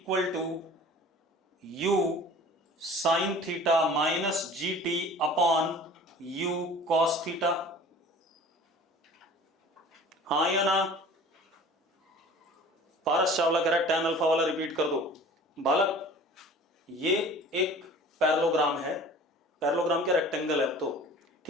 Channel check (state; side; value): normal; both; correlation 0.44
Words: to U sine theta minus G T upon U cos theta. हाँ या ना? पारस चावला कह रहा है tan अल्फा वाला रिपीट कर दो। बालक, ये एक पैरेललोग्राम है, पैरेललोग्राम क्या रेक्टेंगल है तो